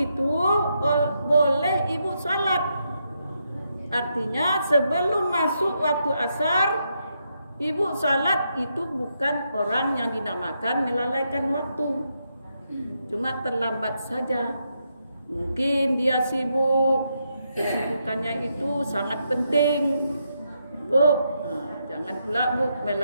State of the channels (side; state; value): both; inverted; correlation -0.81